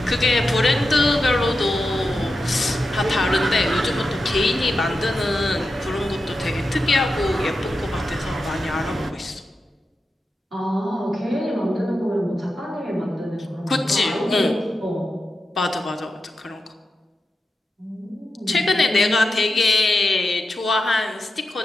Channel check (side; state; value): both; normal; correlation 0.90